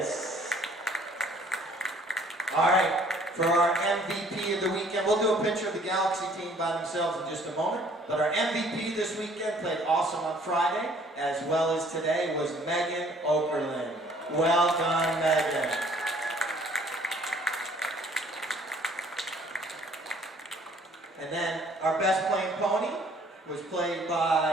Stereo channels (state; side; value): normal; both; correlation 0.57